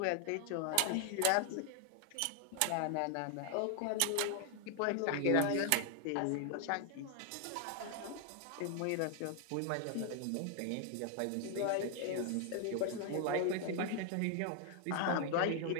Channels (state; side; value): different; both; correlation 0.00